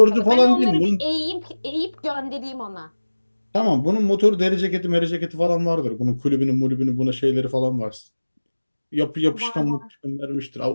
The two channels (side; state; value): both; inverted; correlation -1.00